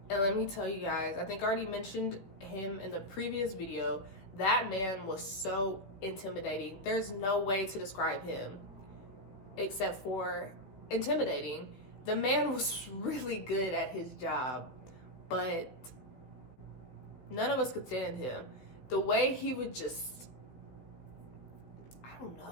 And let me tell you guys, I think I already mentioned him in the previous video. That man was so intimidating. There's no way to describe him except for intimidating. The man was really good at his job, but none of us could stand him. The way he would just, I don't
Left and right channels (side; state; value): right; late; 15 ms